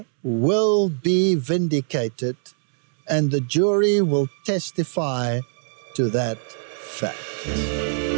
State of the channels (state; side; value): silent; left; 64 dB below the other